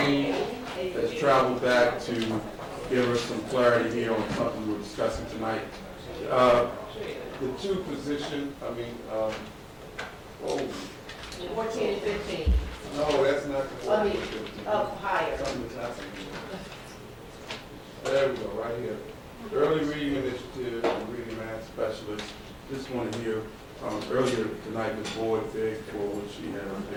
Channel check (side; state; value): both; identical; correlation 1.00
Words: has traveled back to give us some clarity here on something we're discussing tonight. The two position, 14 and 15. no, that's not the I 14. mean, up higher. There we go, right here. Early reading initiative, and reading math specialist. This one here, earlier tonight, the board begged for what she had up